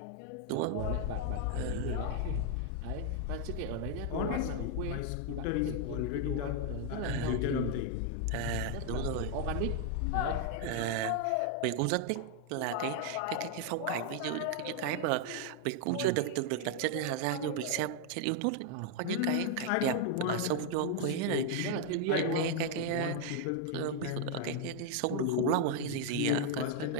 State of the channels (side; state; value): both; different; correlation 0.00